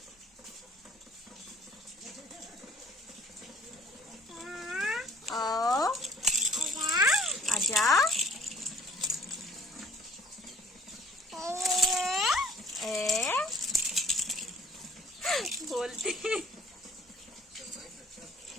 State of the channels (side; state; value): both; normal; correlation 0.55